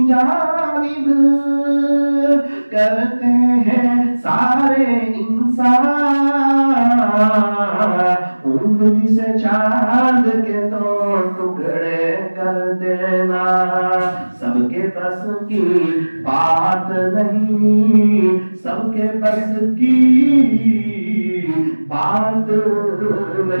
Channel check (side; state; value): both; inverted; correlation -1.00